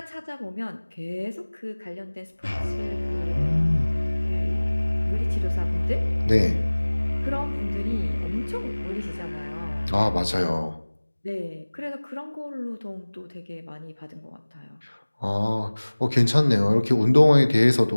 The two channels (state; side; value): inverted; both; correlation -1.00